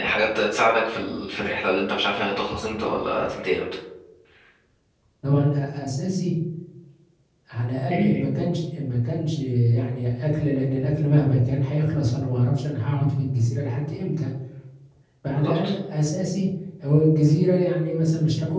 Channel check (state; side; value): identical; both; correlation 1.00